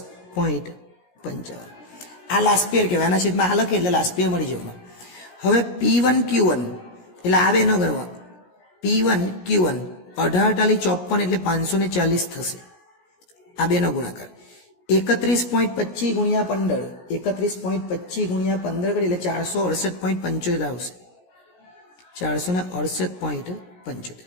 આ લાસ્ટ પેયર કહેવાય. આના છેદમાં આ લખે એટલે લાસ્ટ પેયર મળી જવાનું. હવે P1 Q1 એટલે આ બેનો ગણવા. P1 Q1 18 54 એટલે 540 થશે. આ બેનો ગુણાકાર 31.25 ગુણ્યા 15 31.25 ગુણ્યા 15 કરી એટલે 468.75 આવશે. 468.75.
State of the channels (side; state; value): right; late; 17 ms